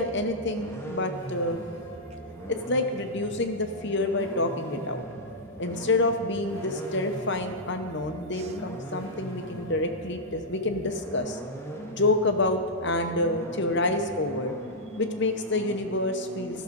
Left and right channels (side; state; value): both; normal; correlation -0.07